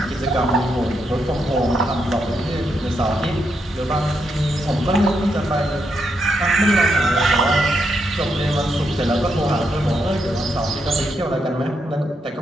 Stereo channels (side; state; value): both; normal; correlation 0.80